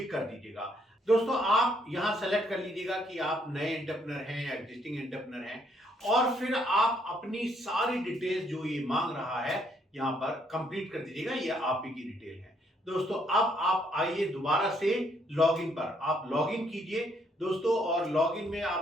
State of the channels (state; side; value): normal; both; correlation 0.70